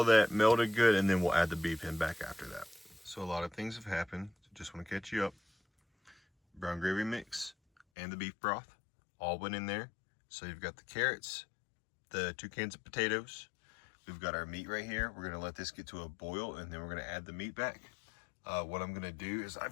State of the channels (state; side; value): drops out; right; at 7.9 s